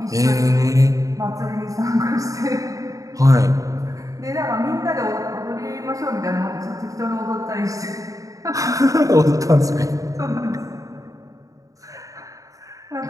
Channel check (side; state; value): left; late; 0.16 ms